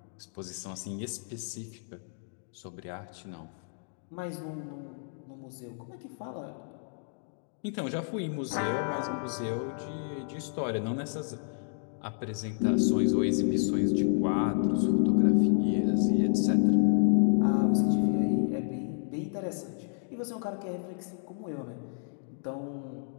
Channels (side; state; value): right; silent; digital silence